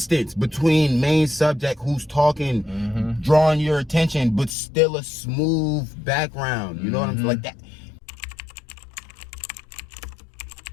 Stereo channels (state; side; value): drops out; right; at 4.5 s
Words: between main subject who's talking, drawing your attention, but still a smooth background. You know what I'm saying? Like that.